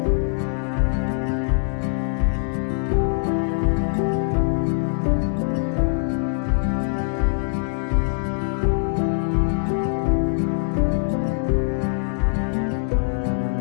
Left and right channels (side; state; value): right; silent; digital silence